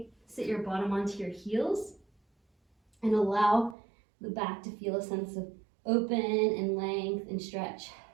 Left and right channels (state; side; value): drops out; left; at 3.8 s